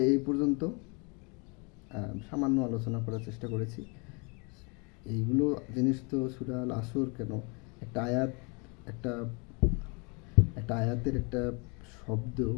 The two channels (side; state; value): right; quieter; 32.1 dB